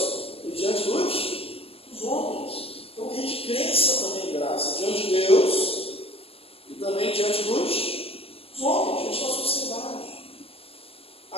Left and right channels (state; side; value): late; right; 0.28 ms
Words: e diante dos homens. Então, que a gente cresça também em graça diante de Deus e também diante dos homens, diante da sociedade.